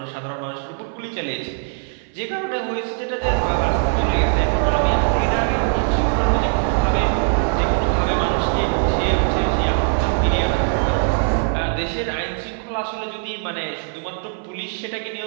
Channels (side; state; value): left; silent; 57 dB below the other